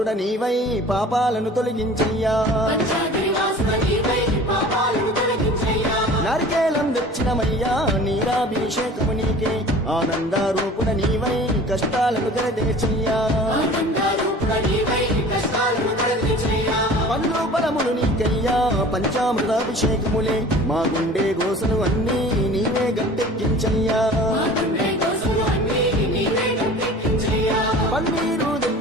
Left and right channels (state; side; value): normal; both; correlation 0.43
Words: నీవై పాపాలను తొలగించయ్యా నారికేలం తెచ్చినమయ్యా నీరాభిషేకము నీకే ఆనందారూపుడ నీవై కష్టాలను తెరదేచయ్యా పండ్లు ఫలములు నీకయ్యా పంచామృతాభిషేకములే మా గుండె గోసలు అన్నీ నీవే గట్టెక్కించయ్యా పన్నీరు